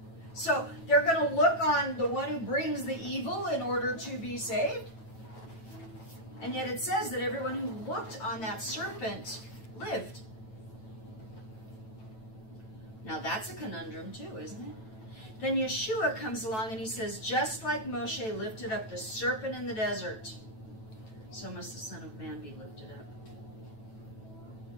So they're going to look on the one who brings the evil in order to be saved. And yet it says that everyone who looked on that serpent lived. Now that's a conundrum too, isn't it? Then Yeshua comes along and he says, just like Moshe lifted up the serpent in the desert, so must the Son of Man be lifted up.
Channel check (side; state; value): right; late; 9.1 ms